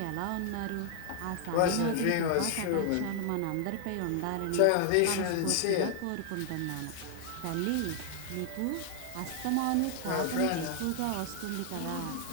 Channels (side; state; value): both; different; correlation 0.00